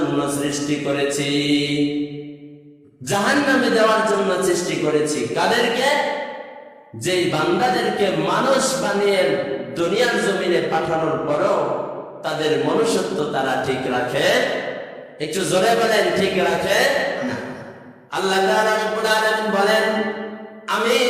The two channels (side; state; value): both; identical; correlation 1.00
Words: সৃষ্টি করেছি। জাহান্নামে দেওয়ার জন্য সৃষ্টি করেছি কাদেরকে? যেই বান্দাদেরকে মানুষ বানিয়ে দুনিয়ার জমিনে পাঠানোর পরও তাদের মনুষ্যত্ব তারা ঠিক রাখে। একটু জোরে বলেন, ঠিক রাখে না। আল্লাহ তাআলা রব্বুল আলামিন বলেন, আমি